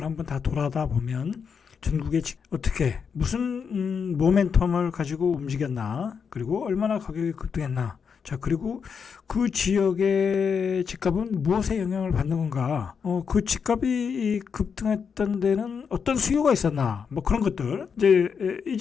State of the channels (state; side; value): quieter; right; 6.4 dB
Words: 한번 다 돌아다 보면 전국에 어떻게 무슨 모멘텀을 가지고 움직였나, 그리고 얼마나 가격이 급등했나, 그리고 그 지역의 집값은 무엇에 영향을 받는 건가? 그 집값이 급등했던 데는 어떤 수요가 있었나? 뭐 그런 것들.